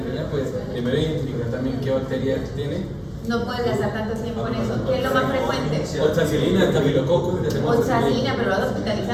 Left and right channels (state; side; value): identical; both; correlation 1.00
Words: pues primero identificar también qué bacteria tiene. No puedes gastar tanto tiempo en eso. ¿Qué es lo más frecuente? Oxacilina, estafilococcus. Oxacilina, pero lo vas a